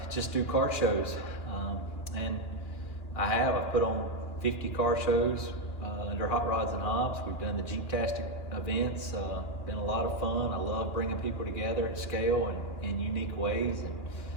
just do car shows, and I've put on 50 car shows under Hot Rods and Hobbs. We've done the Jeep-tastic events. Been a lot of fun. I love bringing people together at scale and in unique ways,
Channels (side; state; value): right; late; 2.4 ms